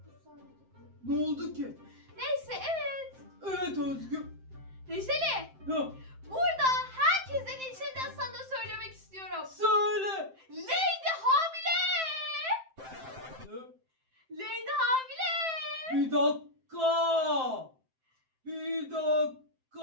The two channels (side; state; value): left; late; 7.7 ms